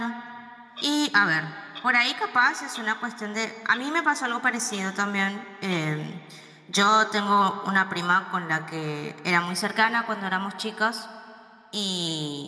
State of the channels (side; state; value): both; identical; correlation 1.00